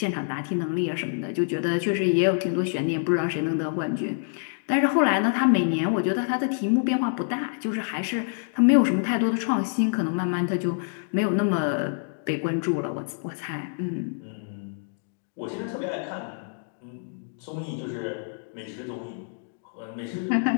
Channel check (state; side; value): silent; right; digital silence